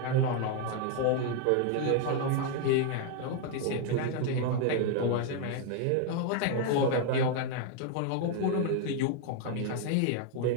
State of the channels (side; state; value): both; different; correlation 0.00